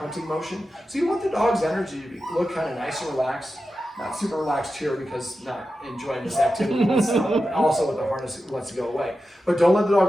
motion. So you want the dog's energy to look kind of nice and relaxed. Not super relaxed here because not enjoying this activity. Also with the harness, it wants to go away. But don't let the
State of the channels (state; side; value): normal; both; correlation 0.91